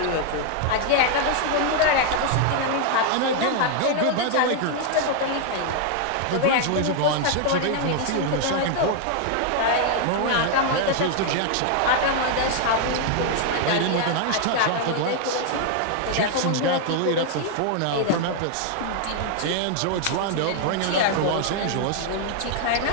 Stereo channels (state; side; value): different; both; correlation 0.00